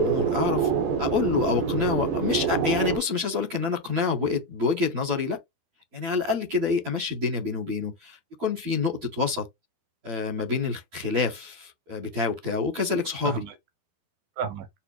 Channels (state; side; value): late; left; 12 ms